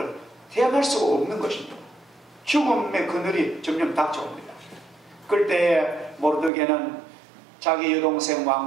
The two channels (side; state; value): left; drops out; at 6.5 s